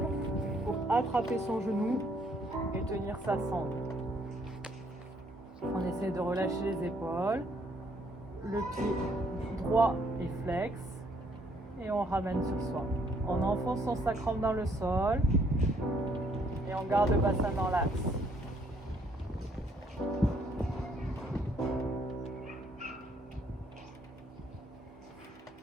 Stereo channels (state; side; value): normal; both; correlation 0.67